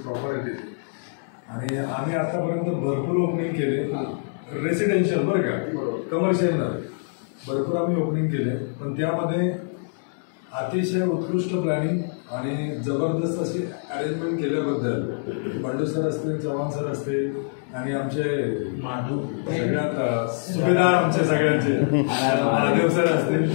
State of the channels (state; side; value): silent; right; digital silence